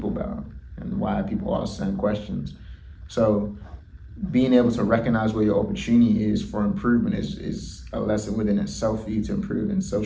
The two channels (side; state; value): both; identical; correlation 1.00